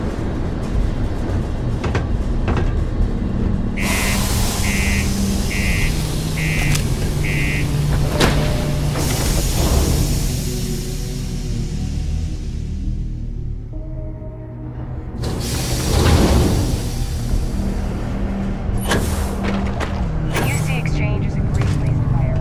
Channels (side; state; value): both; identical; correlation 1.00